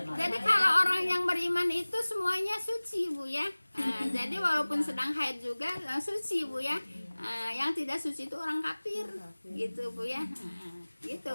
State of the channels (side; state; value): both; inverted; correlation -1.00